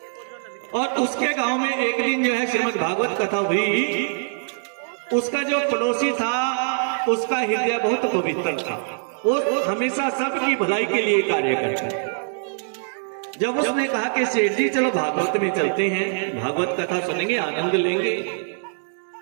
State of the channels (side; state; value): left; silent; digital silence